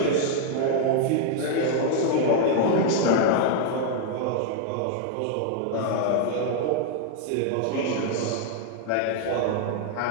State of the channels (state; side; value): different; both; correlation 0.00